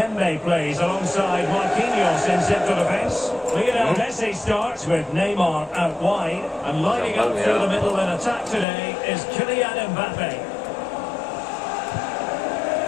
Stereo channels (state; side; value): drops out; right; at 8.7 s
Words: plays alongside Marquinhos in central defence. Lionel Messi starts with Neymar out wide. And lining up through the middle in attack today is Kylian Mbappe.